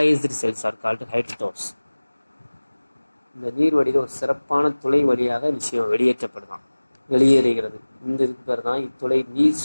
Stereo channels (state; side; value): inverted; both; correlation -1.00